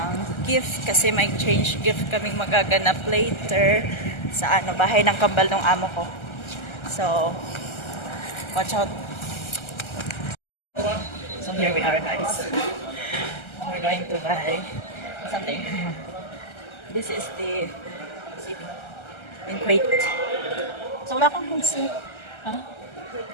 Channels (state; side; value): late; right; 1.3 ms